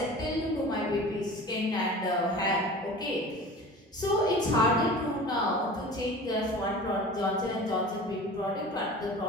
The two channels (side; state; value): both; normal; correlation 0.38